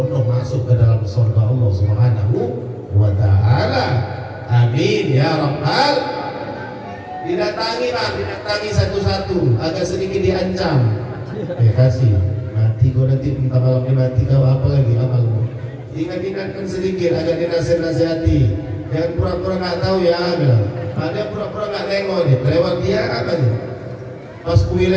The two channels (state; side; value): identical; both; correlation 1.00